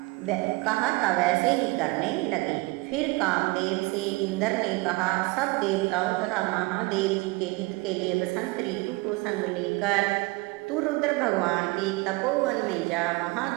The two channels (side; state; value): left; quieter; 24.1 dB